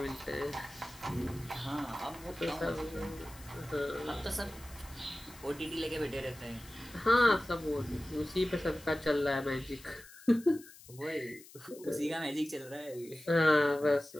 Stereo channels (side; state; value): left; noise; hiss, 20 dB below the sound